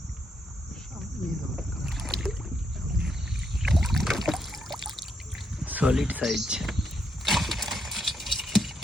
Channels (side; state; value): both; normal; correlation 0.78